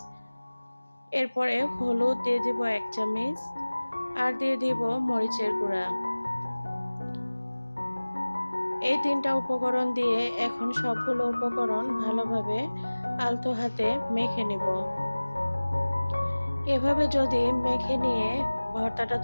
এরপরে হলুদ দিয়ে দিব 1 চামচ আর দিয়ে দিব মরিচের গুঁড়া। এই 3টা উপকরণ দিয়ে এখন সবগুলো উপকরণ ভালোভাবে আলতো হাতে মেখে নেব। এভাবে যদি মেখে নিয়ে ভর্তাটা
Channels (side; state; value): both; inverted; correlation -1.00